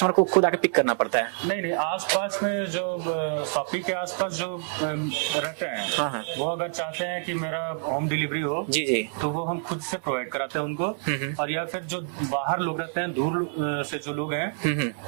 को खुद आके पिक करना पड़ता है? नहीं, आसपास में जो शॉपी के आसपास जो रहते हैं, हाँ। वो अगर चाहते हैं कि मेरा होम डिलीवरी हो जी जी, तो वो हम खुद से प्रोवाइड कराते हैं उनको। और या फिर जो बाहर लोग रहते हैं, दूर से जो लोग हैं,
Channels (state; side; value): silent; left; digital silence